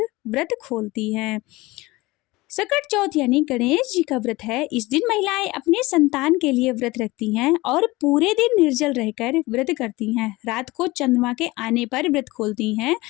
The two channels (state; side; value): quieter; right; 21.0 dB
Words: व्रत खोलती हैं। सकट चौथ यानी गणेश जी का व्रत है। इस दिन महिलाएं अपने संतान के लिए व्रत रखती हैं और पूरे दिन निर्जल रहकर व्रत करती हैं। रात को चंद्रमा के आने पर व्रत खोलती हैं।